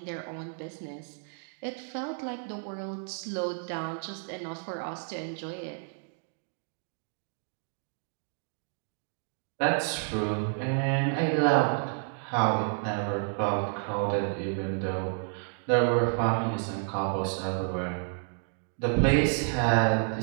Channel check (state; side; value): silent; left; 58 dB below the other